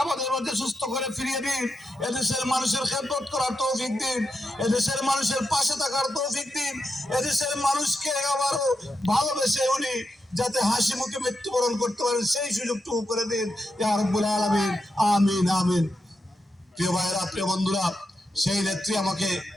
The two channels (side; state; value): both; normal; correlation 0.86